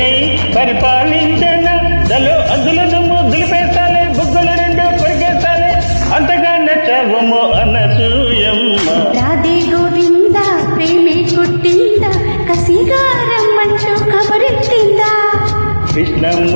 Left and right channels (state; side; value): inverted; both; correlation -1.00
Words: పరిపాలించన దలో అద్దులను దులిపేస్తాలే బుగ్గలు రెండు కొరికేస్తాలే అంతగా నచ్చవము అనసూయమ్మ రాధే గోవింద ప్రేమే కొట్టిందా కసిగారం మంచు కబరెట్టిందా కృష్ణ